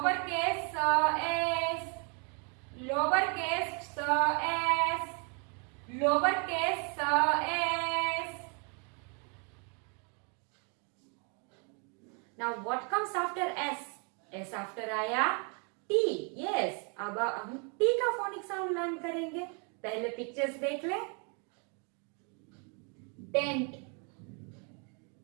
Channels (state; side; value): quieter; left; 37.1 dB